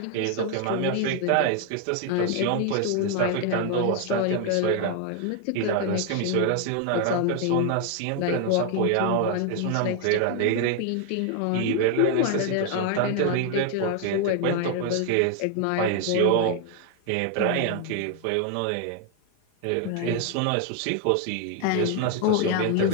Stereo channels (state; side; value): different; both; correlation 0.00